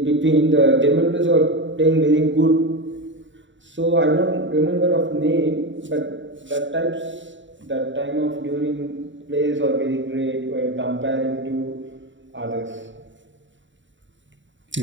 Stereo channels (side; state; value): left; late; 0.54 ms